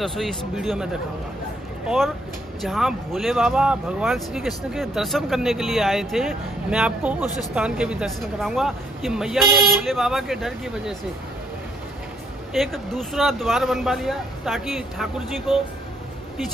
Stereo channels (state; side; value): normal; both; correlation 0.69